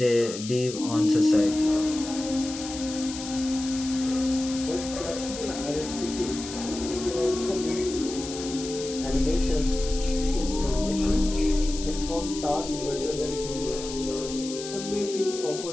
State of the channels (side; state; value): left; noise; hiss, 10 dB below the sound